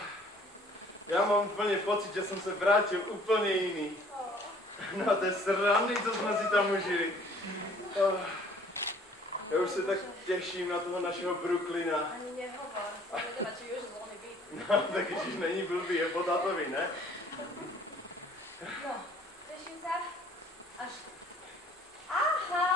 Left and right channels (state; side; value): normal; both; correlation 0.56